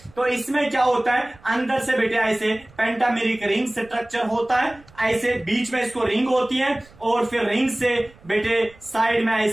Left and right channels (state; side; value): noise; right; rumble, 26 dB below the sound